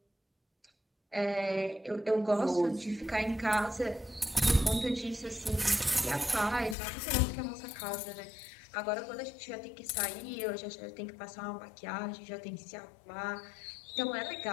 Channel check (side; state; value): right; drops out; at 6.8 s